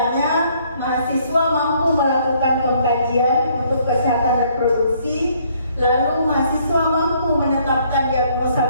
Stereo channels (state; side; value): inverted; both; correlation -0.65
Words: mahasiswa mampu melakukan pengkajian untuk kesehatan reproduksi. Lalu mahasiswa mampu menetapkan diagnosa